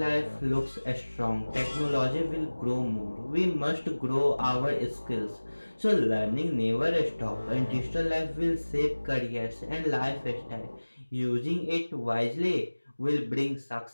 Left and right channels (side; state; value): both; inverted; correlation -1.00